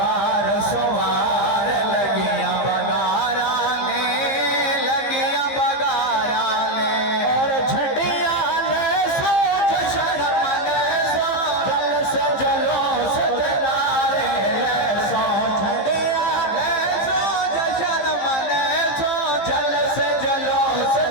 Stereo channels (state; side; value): late; right; 15 ms